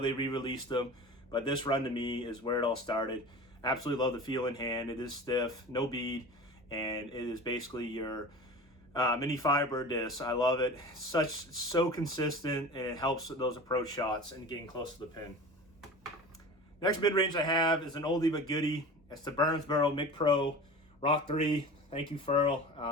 they re-released them, but this run to me is where it all started. Absolutely love the feel in hand. It is stiff, no bead, and it is basically your mini fiber disc. I love it. So consistent, and it helps with those approach shots and getting close to the pin. Next mid-range I have is an oldie but goodie. It's the Burnsboro Mic Pro Rock 3. Thank you,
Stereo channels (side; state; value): both; normal; correlation 0.36